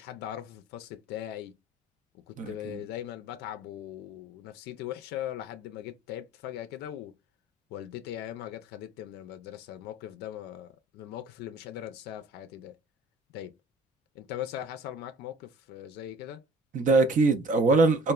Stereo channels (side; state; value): both; normal; correlation 0.51